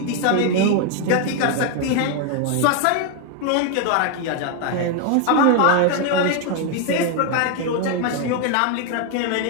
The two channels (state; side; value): different; both; correlation 0.01